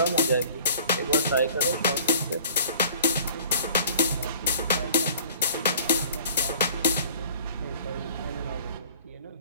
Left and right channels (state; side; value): inverted; both; correlation -0.49